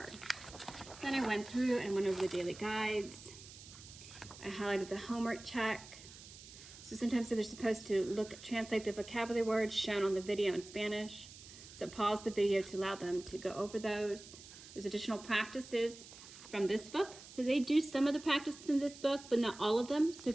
Then I went through and went over the daily guides. I highlighted the homework check. So sometimes they're supposed to translate the vocabulary words shown on the video in Spanish. So pause the video to allow them to go over those. There's additional practices from this book. So they do some of the practices in this book, but not all of them. So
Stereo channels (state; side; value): noise; right; hiss, 17 dB below the sound